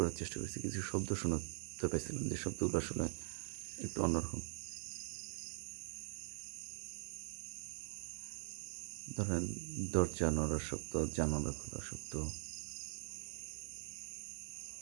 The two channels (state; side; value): silent; left; digital silence